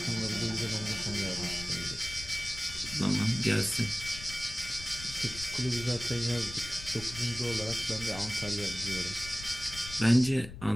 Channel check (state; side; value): noise; left; rumble, 12 dB below the sound